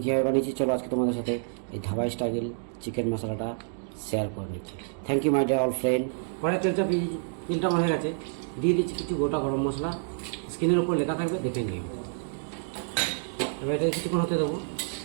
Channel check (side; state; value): left; silent; digital silence